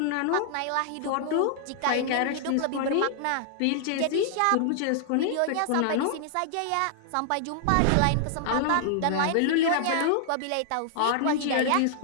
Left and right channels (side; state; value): both; different; correlation -0.01